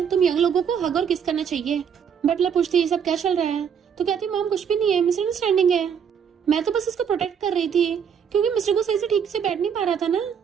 तुम यंग लोगों को हग और किस करना चाहिए। बटलर पूछती है ये सब क्या चल रहा है? तो कहती मॉम कुछ भी नहीं है, मिसअंडरस्टैंडिंग है, मैं तो बस इसको प्रोटेक्ट कर रही थी क्योंकि मिस्टर को सही से ठीक से बैठ नहीं पा रहा था ना।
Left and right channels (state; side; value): quieter; left; 7.5 dB